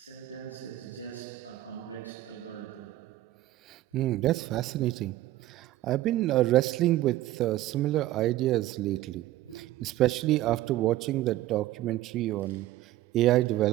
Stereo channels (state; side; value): quieter; left; 15.3 dB